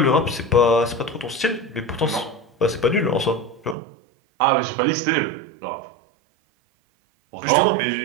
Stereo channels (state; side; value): drops out; left; at 3.8 s